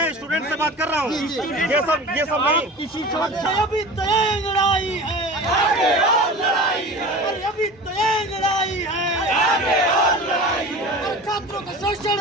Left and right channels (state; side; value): normal; both; correlation 0.36